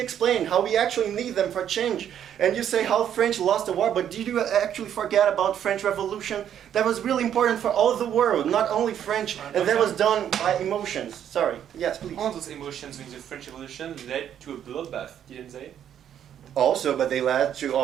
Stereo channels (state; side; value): quieter; left; 9.7 dB